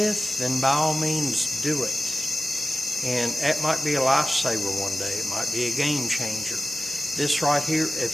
then by all means do it. And that might be a lifesaver one day. It might be a game changer. This right here, it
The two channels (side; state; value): both; normal; correlation 0.95